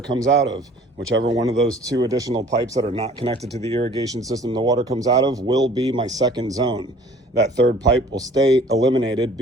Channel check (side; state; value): both; normal; correlation 0.51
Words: comes out of. Whichever one of those 2 additional pipes that are not connected to the irrigation system the water comes out of will be my second zone. That 3rd pipe will stay eliminated